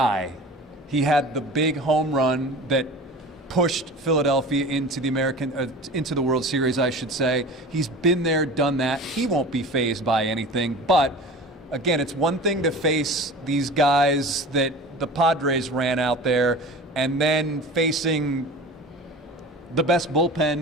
He had the big home run that pushed Philadelphia into the World Series, I should say. He's been there, done that. He won't be fazed by anything. But again, it's one thing to face these guys that the Padres ran out there, and then facing the best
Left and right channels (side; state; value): both; normal; correlation 0.37